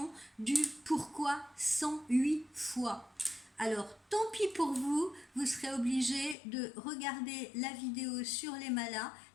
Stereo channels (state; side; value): drops out; right; at 6.4 s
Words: du pourquoi 108 fois. Alors, tant pis pour vous, vous serez obligé de regarder la vidéo sur les malas